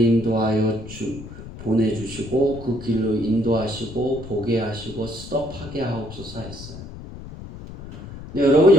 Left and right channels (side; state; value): left; noise; rumble, 13 dB below the sound